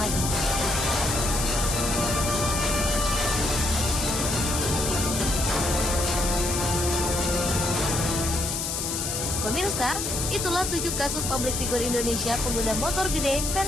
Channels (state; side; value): noise; left; hiss, 2 dB below the sound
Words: Pemirsa, itulah 7 kasus publik figur Indonesia pengguna motor gede